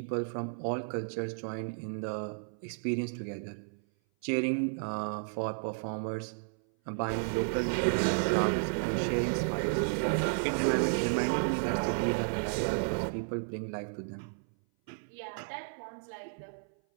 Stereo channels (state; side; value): silent; left; 56 dB below the other